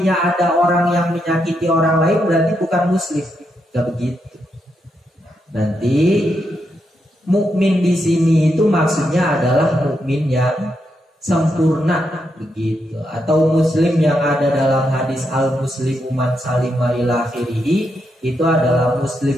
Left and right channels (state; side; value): normal; both; correlation 0.82